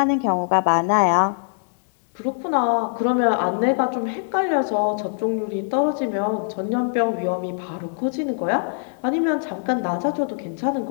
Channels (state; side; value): silent; right; digital silence